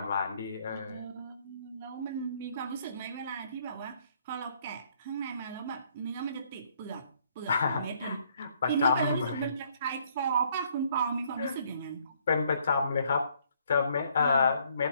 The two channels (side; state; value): both; inverted; correlation -0.66